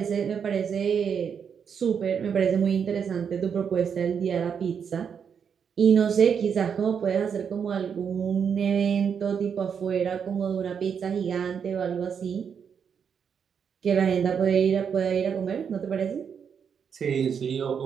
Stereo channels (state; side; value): quieter; left; 7.1 dB